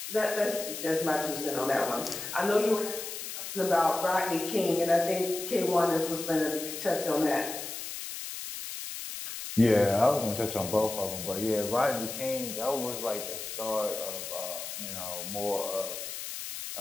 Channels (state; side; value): noise; left; hiss, 7 dB below the sound